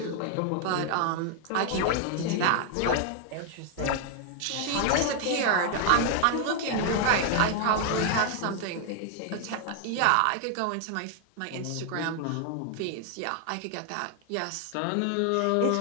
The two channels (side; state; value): both; different; correlation 0.00